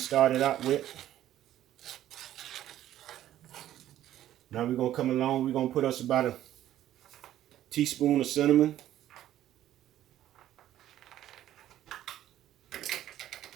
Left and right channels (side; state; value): left; quieter; 12.6 dB